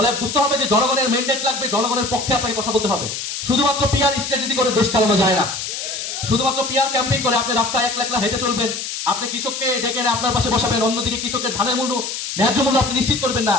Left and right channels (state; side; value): noise; left; hiss, 5 dB below the sound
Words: বুঝতে হবে যে জনগণের ম্যান্ডেট লাগবে, জনগণের পক্ষে আপনাকে কথা বলতে হবে। শুধুমাত্র পিআর স্ট্র্যাটেজি করে দেশ চালানো যায় না। শুধুমাত্র পিআর ক্যাম্পেইন করে আপনি রাস্তায় একলা হেঁটে চলবেন, আপনি কৃষককে ডেকে আপনার পাশে বসাবেন, অন্যদিকে কৃষকের ধানের মূল্য, ন্যায্য মূল্য আপনি নিশ্চিত করবেন না।